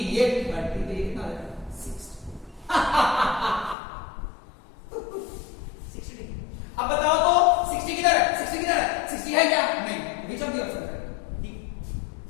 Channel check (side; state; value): right; drops out; at 3.8 s